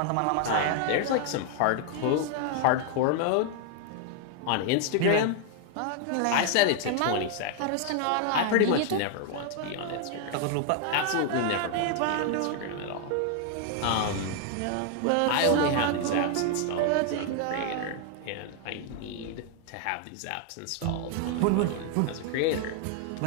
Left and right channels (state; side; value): different; both; correlation 0.00